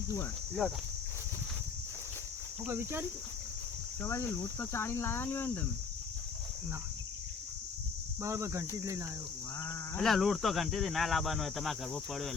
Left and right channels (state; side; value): quieter; right; 5.3 dB